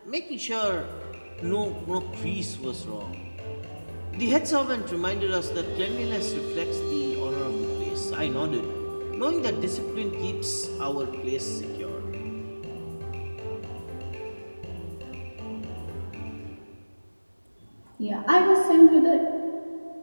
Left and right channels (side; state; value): both; inverted; correlation -1.00